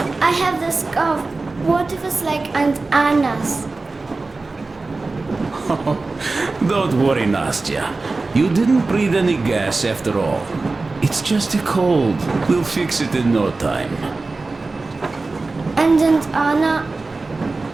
I have this cough. What if it's like Aunt Anna's? Don't worry, Nastya. You didn't breathe any gas after all. It's just a cold. We'll fix it in no time. And Aunt Anna?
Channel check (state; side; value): quieter; left; 3.6 dB